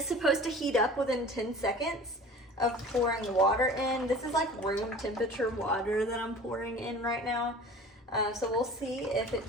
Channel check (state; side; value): normal; both; correlation 0.42